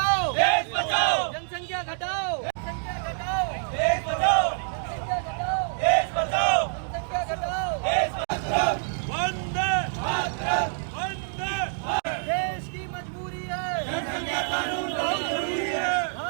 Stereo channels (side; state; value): left; silent; 60 dB below the other